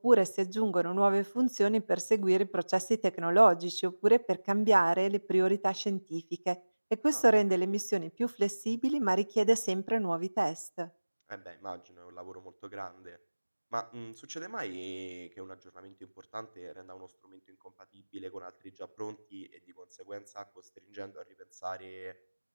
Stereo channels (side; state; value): both; inverted; correlation -1.00